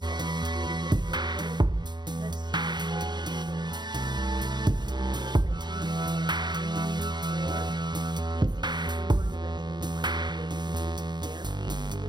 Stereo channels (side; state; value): left; late; 0.21 ms